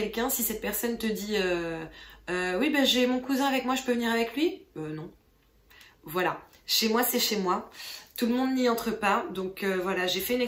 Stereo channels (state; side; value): identical; both; correlation 1.00